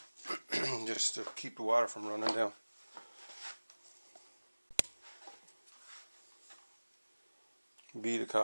just to keep the water from running down. Bead of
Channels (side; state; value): both; inverted; correlation -1.00